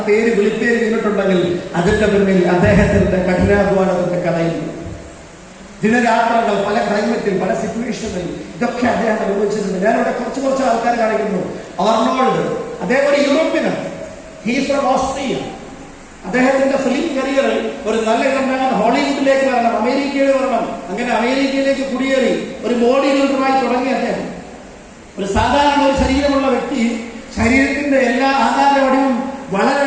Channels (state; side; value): identical; both; correlation 1.00